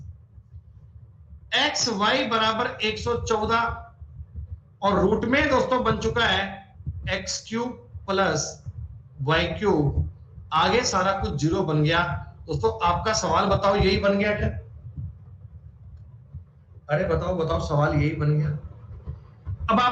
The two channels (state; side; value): identical; both; correlation 1.00